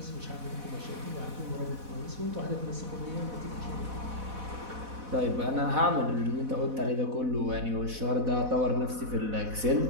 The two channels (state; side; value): late; left; 4.1 ms